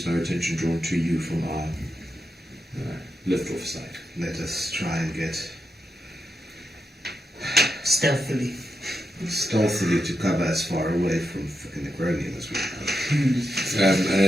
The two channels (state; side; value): normal; both; correlation 0.86